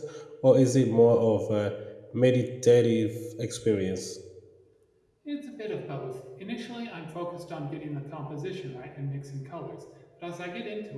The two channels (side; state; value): both; identical; correlation 1.00